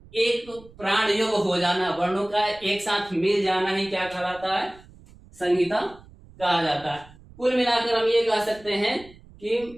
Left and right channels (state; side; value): noise; right; rumble, 23 dB below the sound